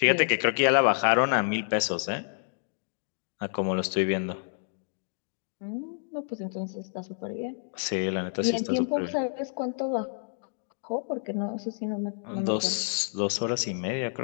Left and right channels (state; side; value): silent; right; digital silence